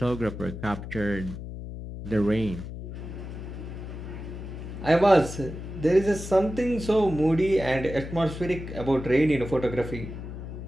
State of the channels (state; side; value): noise; left; hum, 9 dB below the sound